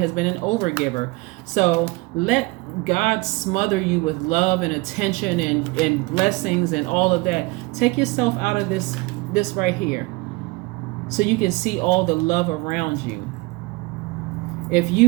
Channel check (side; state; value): left; quieter; 23.9 dB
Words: been an overgiver. So let God smother you with love and attention and blessings and all of that. Take yourself out of this right here, so you can see all the love around you. If